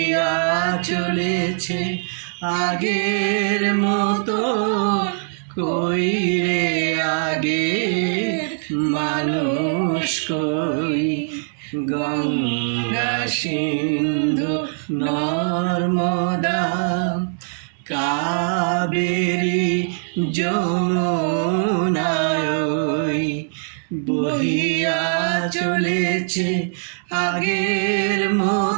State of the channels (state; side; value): silent; left; 65 dB below the other